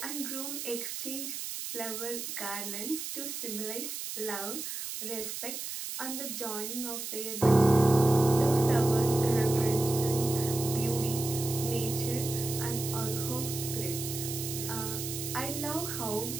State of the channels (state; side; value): noise; right; hiss, 6 dB below the sound